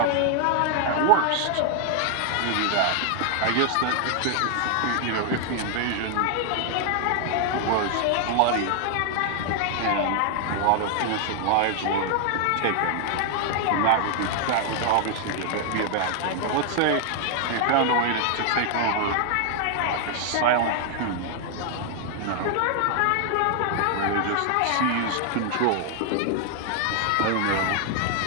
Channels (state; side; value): different; both; correlation 0.00